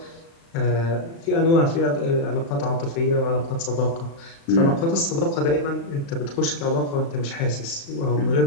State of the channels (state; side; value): late; right; 36 ms